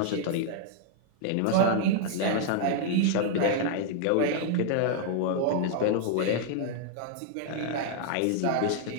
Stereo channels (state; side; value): different; both; correlation -0.01